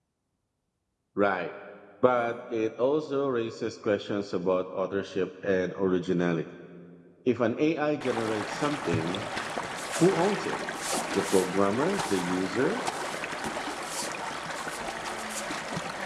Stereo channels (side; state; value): both; identical; correlation 1.00